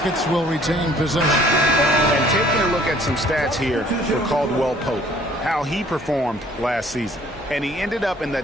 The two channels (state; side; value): normal; both; correlation 0.57